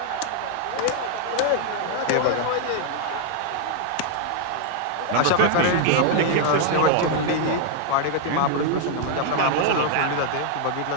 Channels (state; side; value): different; both; correlation 0.00